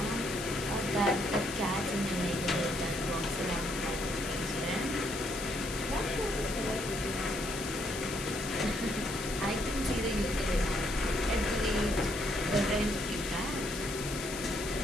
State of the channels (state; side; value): noise; left; hiss, 8 dB below the sound